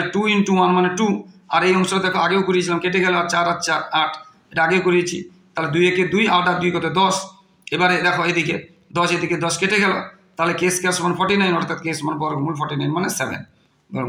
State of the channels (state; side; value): identical; both; correlation 1.00